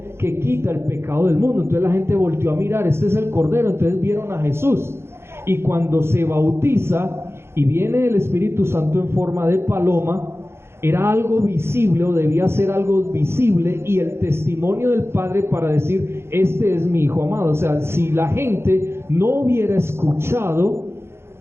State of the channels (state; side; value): late; left; 0.12 ms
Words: que quita el pecado del mundo. Entonces la gente volteó a mirar, este es el Cordero, entonces vieron a Jesús. Y cuando se bautiza y viene el Espíritu Santo en forma de paloma, era algo visible, o debía ser algo visible, y el testimonio del Padre para decir, este es mi Hijo amado. O sea, si la gente no hubiera escuchado